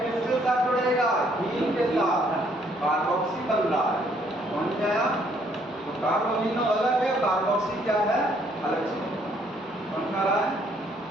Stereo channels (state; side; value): normal; both; correlation 0.66